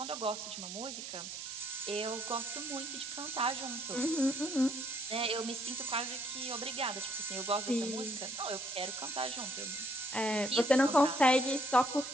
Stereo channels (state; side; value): noise; right; hiss, 8 dB below the sound